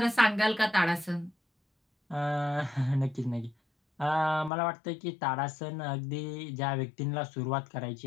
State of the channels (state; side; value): drops out; right; at 4.5 s